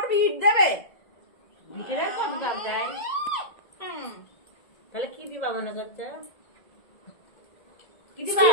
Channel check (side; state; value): right; late; 1.8 ms